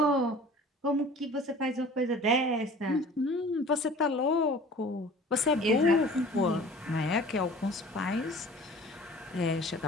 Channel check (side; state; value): both; normal; correlation 0.45